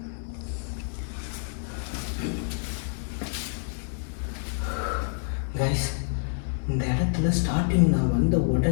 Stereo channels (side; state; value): right; silent; 60 dB below the other